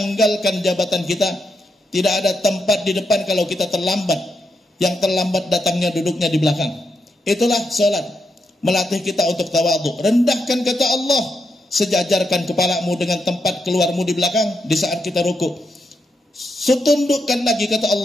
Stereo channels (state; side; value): normal; both; correlation 0.82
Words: jabatan kita. Tidak ada tempat di depan kalau kita terlambat. Yang terlambat datangnya duduknya di belakang. Itulah salat, melatih kita untuk tawadhu. Rendahkan kata Allah, sejajarkan kepalamu dengan tempat keluarmu di belakang di saat kita rukuk. Setundukkan lagi kata